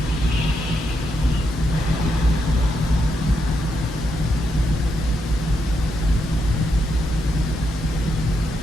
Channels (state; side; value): normal; both; correlation 0.81